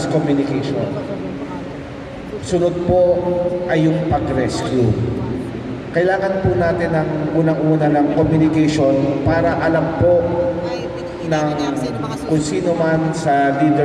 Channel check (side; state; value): both; identical; correlation 1.00